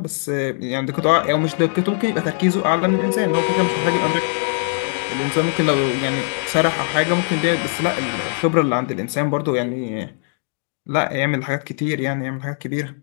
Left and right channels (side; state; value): right; quieter; 38.8 dB